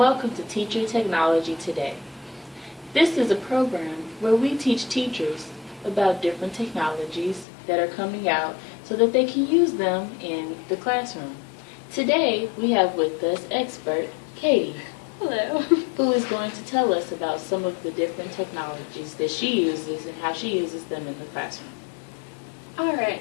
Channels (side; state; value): right; drops out; at 7.5 s